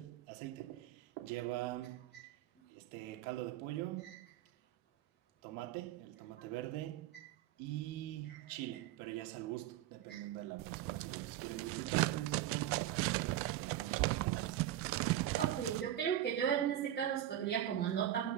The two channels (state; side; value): quieter; left; 12.6 dB